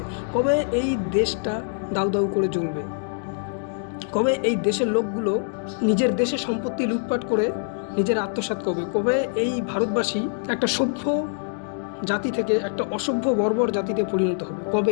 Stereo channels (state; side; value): silent; right; digital silence